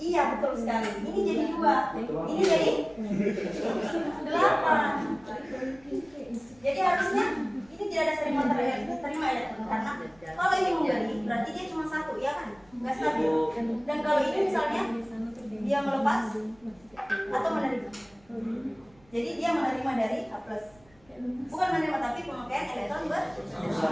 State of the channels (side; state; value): right; noise; rumble, 30 dB below the sound